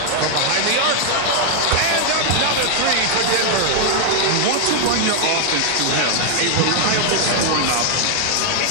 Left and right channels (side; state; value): both; different; correlation 0.00